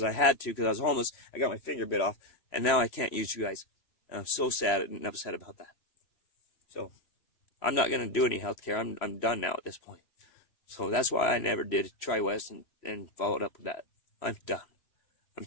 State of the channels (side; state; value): right; late; 3.1 ms